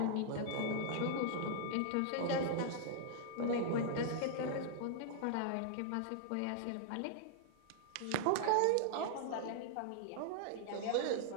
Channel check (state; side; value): different; both; correlation -0.01